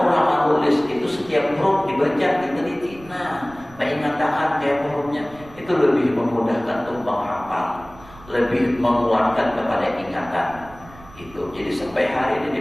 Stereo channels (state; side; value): noise; right; rumble, 21 dB below the sound